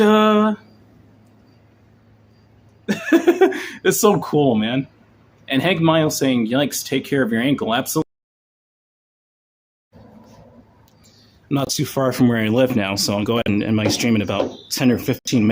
It's so cool, man. And Hank Miles saying, yikes, take care of your ankle. Absolutely. I'm not too far from where I live now, so I'll go ahead and end my stream in about 10 or 15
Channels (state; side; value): identical; both; correlation 1.00